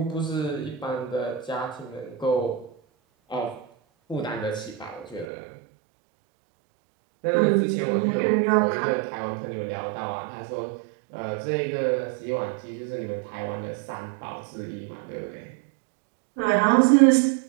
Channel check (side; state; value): left; drops out; at 5.2 s